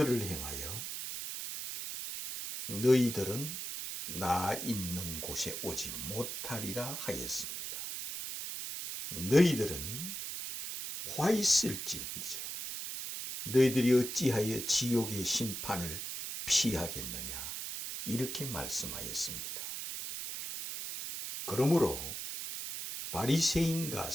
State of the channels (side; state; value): right; noise; hiss, 6 dB below the sound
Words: 향하여 너희들은 나 있는 곳에 오지 못하리라 하였습니다. 너희들은 화 있을진저 너희들이 어찌하여 지옥의 심판을 피하겠느냐 이렇게 말씀하였습니다. 그러므로 바리새인과